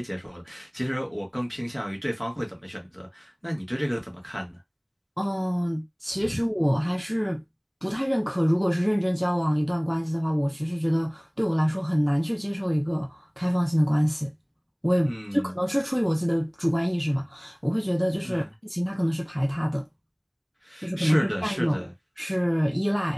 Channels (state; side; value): identical; both; correlation 1.00